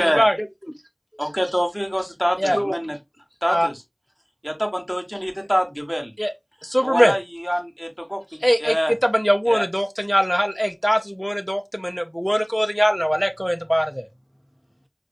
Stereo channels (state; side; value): identical; both; correlation 1.00